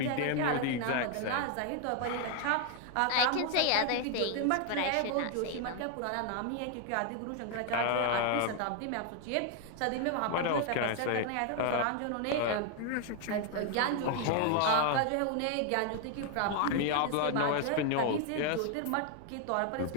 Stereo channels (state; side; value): different; both; correlation 0.00